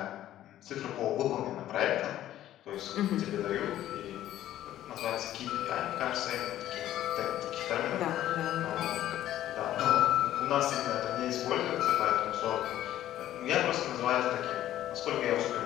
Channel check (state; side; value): quieter; right; 12.9 dB